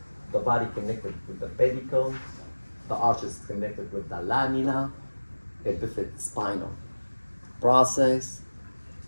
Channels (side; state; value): both; inverted; correlation -1.00